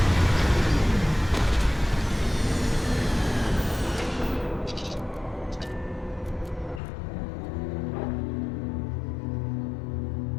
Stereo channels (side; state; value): right; drops out; at 6.8 s